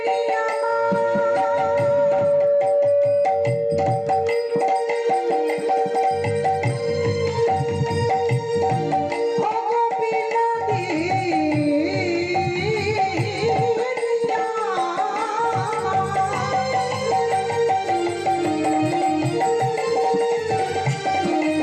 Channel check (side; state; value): both; identical; correlation 1.00